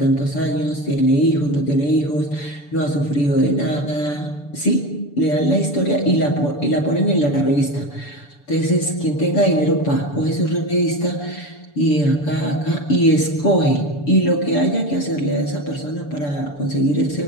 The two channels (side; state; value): right; late; 6.9 ms